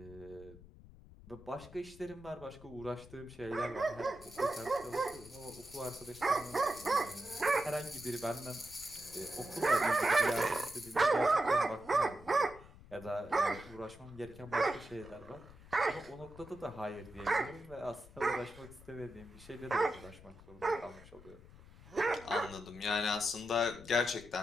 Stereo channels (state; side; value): noise; left; rumble, 20 dB below the sound